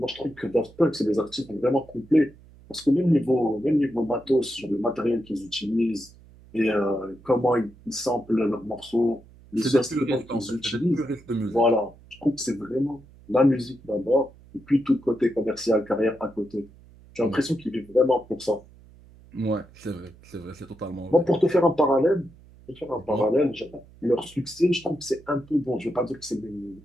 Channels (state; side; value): noise; right; hum, 24 dB below the sound